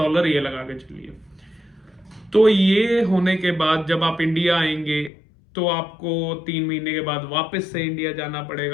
ये लगा के चलिए। तो ये होने के बाद जब आप इंडिया आएंगे तो आपको 3 महीने के बाद वापस से इंडिया जाना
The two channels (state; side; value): drops out; right; at 5.1 s